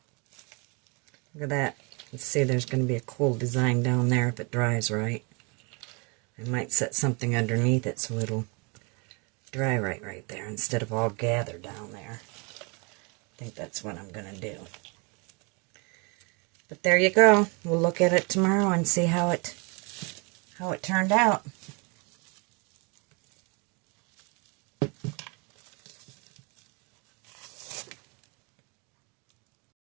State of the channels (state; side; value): quieter; left; 31.5 dB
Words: Look at that. Let's see, there's going to be a cool design down there if it dries right. I might set something underneath it so it'll dry right there instead of all gathered down there. I think that's what I'm going to do. But there you go. We'll look at it tomorrow and see how it turned out.